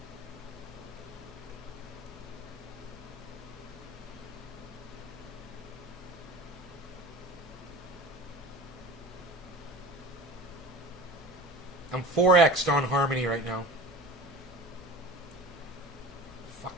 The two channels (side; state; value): both; normal; correlation 0.37